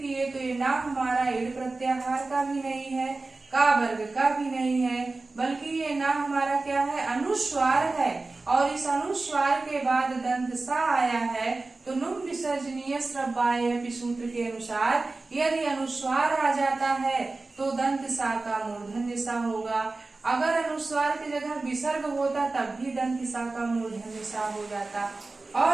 किए तो ये ना हमारा इड प्रत्याहार का भी नहीं है, का वर्ग का भी नहीं है, बल्कि ये ना हमारा क्या है? अनुस्वार है। और इस अनुस्वार के बाद दंत सा आया है तो नुम विसर्जनीय स्रबाय सूत्र के अनुसार यदि अनुस्वार आ जाता है तो दंत सा का मूर्धन्य सा होगा। अगर अनुस्वार की जगह विसर्ग होता तब भी दंत सा का मूर्धन्य सा हो जाता।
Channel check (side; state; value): left; quieter; 3.4 dB